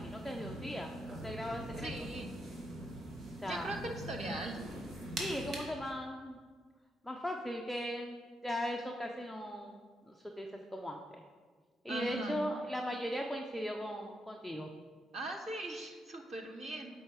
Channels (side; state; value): both; normal; correlation 0.81